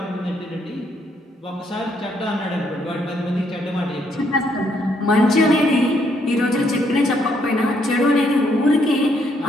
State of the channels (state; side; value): normal; both; correlation 0.72